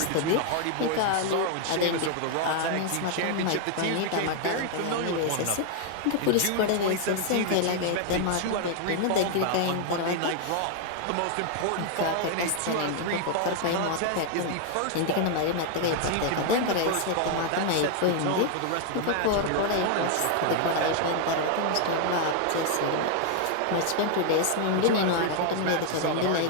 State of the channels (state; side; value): different; both; correlation 0.00